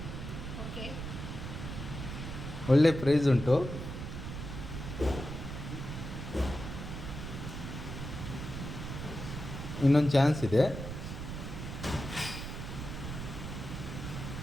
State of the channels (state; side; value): noise; right; rumble, 7 dB below the sound